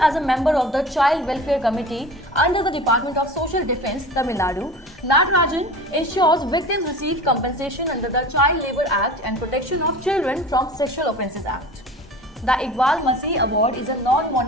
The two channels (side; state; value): both; normal; correlation 0.38